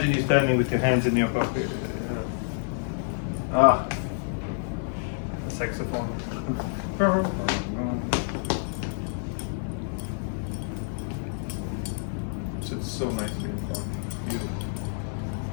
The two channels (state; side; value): silent; right; digital silence